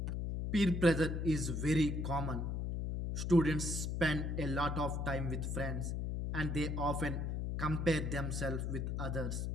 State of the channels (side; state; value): left; noise; hum, 1 dB below the sound